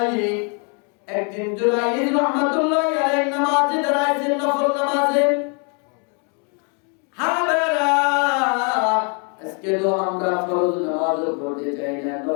একদিন জুরাইজ রাহমাতুল্লাহি আলাইহি নামাজে দাঁড়াইছেন, নফল নামাজে। আজকে তো আমরা ফরজ নামাজও পড়তে চাই না,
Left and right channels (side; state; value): right; quieter; 37.2 dB